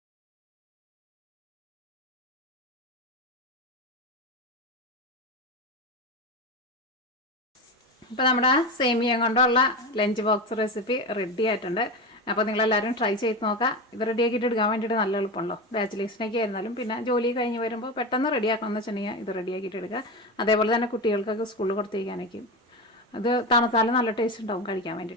ഇപ്പോൾ നമ്മുടെ സേമിയ കൊണ്ടുള്ള ലഞ്ച് ബോക്സ് റെസിപ്പി റെഡി ആയിട്ടുണ്ട്. അപ്പോൾ നിങ്ങളെല്ലാവരും ട്രൈ ചെയ്ത് നോക്കാം. ഇത് റെഡിയാക്കിയിട്ട് എടുക്കാൻ വേണ്ടിയിട്ട് നല്ല എളുപ്പമുള്ളൂ. ബാച്ചിലേഴ്സിനൊക്കെ ആയിരുന്നാലും പിന്നെ ജോലി കഴിഞ്ഞ് വരുമ്പോൾ പെട്ടെന്ന് റെഡിയാക്കണമെന്ന് വെച്ചിട്ടുണ്ടെങ്കിൽ ഇത് റെഡിയാക്കിയിട്ട് എടുക്കുക. അതേപോലെ തന്നെ കുട്ടികൾക്കൊക്കെ സ്കൂളിൽ കൊടുത്തേക്കാനൊക്കെ ഇത് തണുത്താലും നല്ല ടേസ്റ്റ് ഉണ്ടാവും കഴിക്കാൻ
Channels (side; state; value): both; normal; correlation 0.21